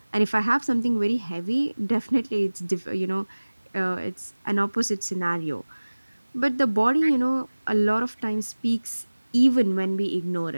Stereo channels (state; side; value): inverted; both; correlation -1.00